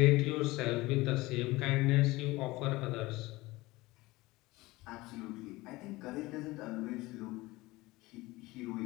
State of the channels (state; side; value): quieter; right; 20.5 dB